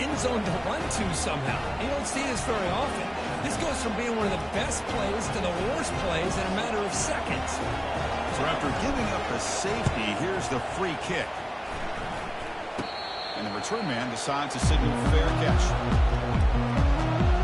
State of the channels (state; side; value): identical; both; correlation 1.00